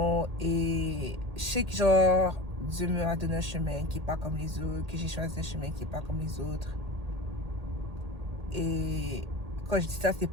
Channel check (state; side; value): late; left; 1.8 ms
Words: Et je sais que genre Dieu m'a donné un chemin qui est pas comme les autres, que j'ai choisi un chemin qui est pas comme les autres. Et quand je dis ça, c'est